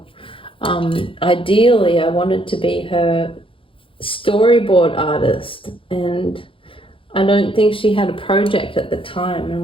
ideally I wanted to be her storyboard artist. And I don't think she had a project at the time,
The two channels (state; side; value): late; right; 0.25 ms